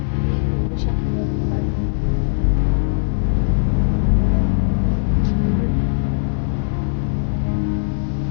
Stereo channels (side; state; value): right; silent; 64 dB below the other